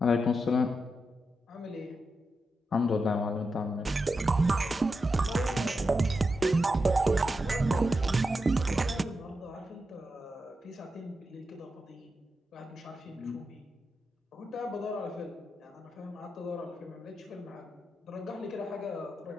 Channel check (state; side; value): normal; both; correlation 0.88